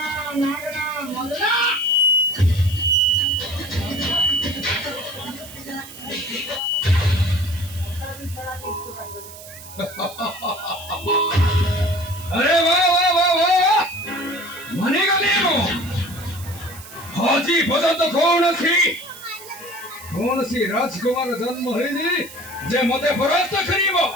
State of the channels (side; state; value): right; noise; hiss, 16 dB below the sound